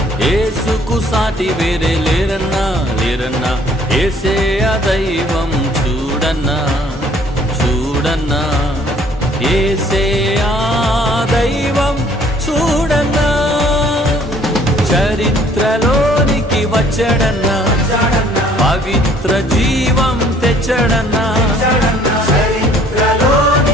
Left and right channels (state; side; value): normal; both; correlation 0.58